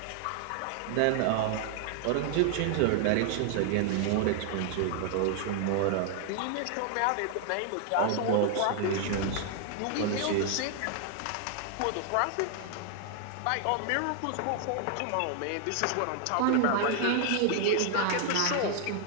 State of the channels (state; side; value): different; both; correlation 0.00